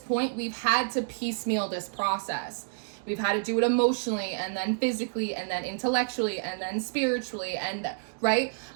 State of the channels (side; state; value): left; silent; digital silence